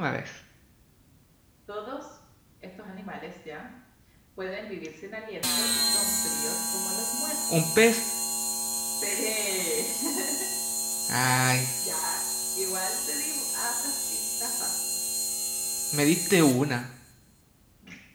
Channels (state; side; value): identical; both; correlation 1.00